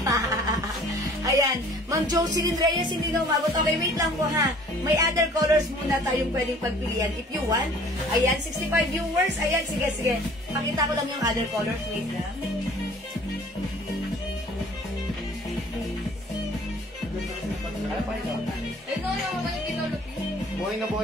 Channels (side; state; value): both; normal; correlation 0.52